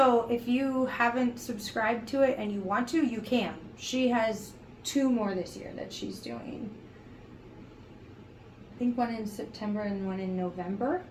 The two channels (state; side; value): identical; both; correlation 1.00